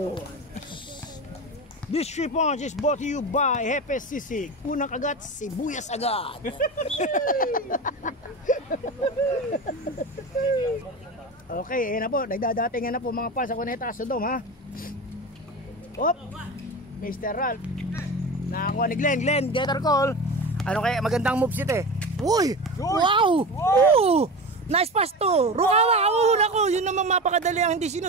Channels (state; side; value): normal; both; correlation 0.27